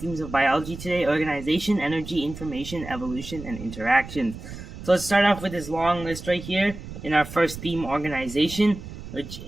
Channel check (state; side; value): noise; right; rumble, 12 dB below the sound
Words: of biology today: organization, energy, information, evolution, and interactions. So let's start off with this long list right here in our first theme, organization, which